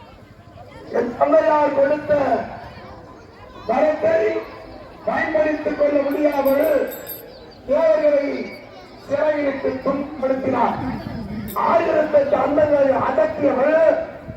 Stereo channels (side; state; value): both; identical; correlation 1.00